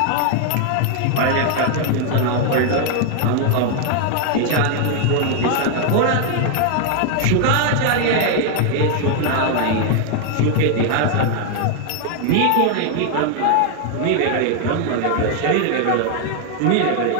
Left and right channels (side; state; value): both; different; correlation 0.00